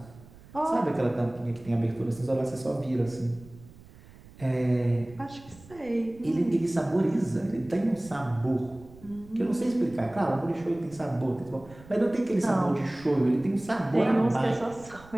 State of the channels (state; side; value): noise; right; rumble, 21 dB below the sound